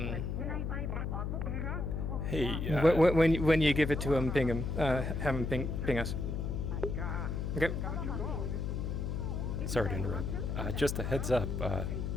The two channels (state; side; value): noise; left; hum, 2 dB below the sound